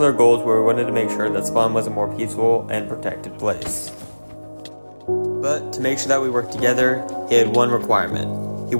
goals where we wanted to make sure that spawn was a more peaceful and protected place. But to make sure that we worked together, he had one requirement. He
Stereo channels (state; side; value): inverted; both; correlation -1.00